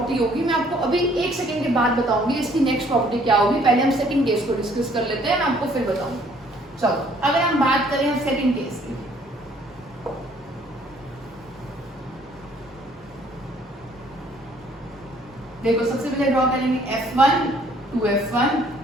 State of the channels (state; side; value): normal; both; correlation 0.61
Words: होगी, मैं आपको अभी 1 सेकंड के बाद बताऊंगी इसकी नेक्स्ट प्रॉपर्टी क्या होगी। पहले हम सेकंड केस को डिस्कस कर लेते हैं, मैं आपको फिर बताऊंगी। चलो अगर हम बात करें हम सेकंड केस की, देखो सबसे पहले ड्रॉ करेंगे F1 2F1